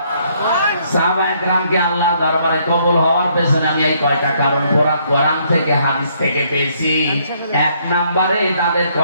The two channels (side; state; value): both; inverted; correlation -0.68